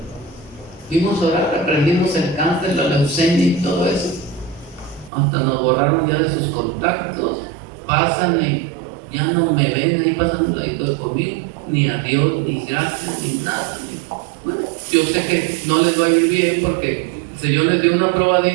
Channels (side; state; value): left; drops out; at 5.1 s